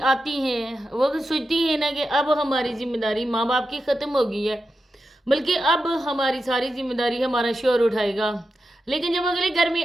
आती हैं, वो तो सोचती हैं ना कि अब हमारी जिम्मेदारी माँ बाप की ख़त्म हो गई है, बल्कि अब हमारी सारी जिम्मेदारी हमारा शोहर उठाएगा। लेकिन जब अगले घर में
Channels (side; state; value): both; normal; correlation 0.89